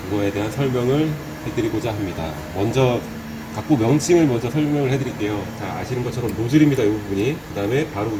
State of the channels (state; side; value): identical; both; correlation 1.00